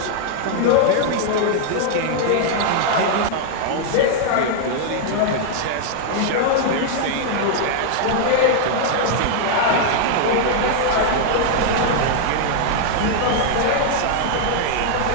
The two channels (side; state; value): both; different; correlation -0.01